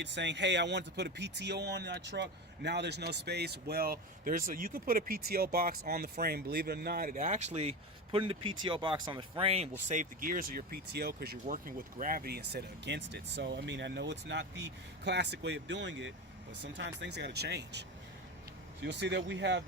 saying, hey, I want to put a PTO on that truck, now there's no space. Well, you can put a PTO box on the frame. Believe it or not, it actually, putting the PTO box on the frame will save the gears of your PTO because you're working with gravity instead of against it. So, I mean, I know it's not the classic way of doing it, but sometimes things got to change. So you'll see that we have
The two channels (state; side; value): normal; both; correlation 0.22